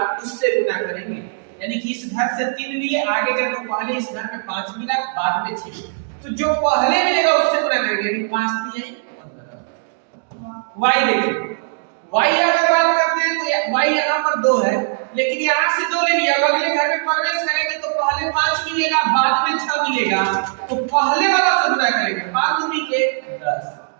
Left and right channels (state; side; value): silent; left; digital silence